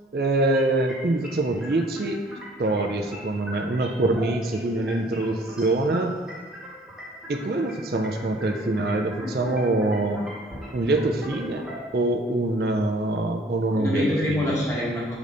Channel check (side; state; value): both; normal; correlation 0.55